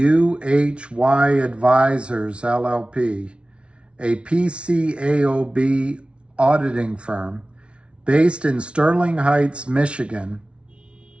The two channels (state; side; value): late; left; 0.059 ms